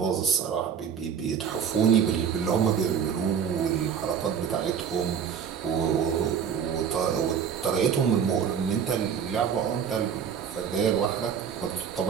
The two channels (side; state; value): left; quieter; 7.5 dB